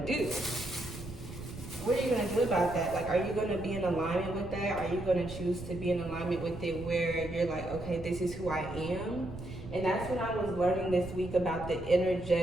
do? What are you gonna do about that? Like, are you gonna be in alignment with that? Are you gonna choose to be in alignment with it where you're like, okay, this is who I am? And that's when I was learning this week about the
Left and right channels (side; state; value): right; noise; rumble, 12 dB below the sound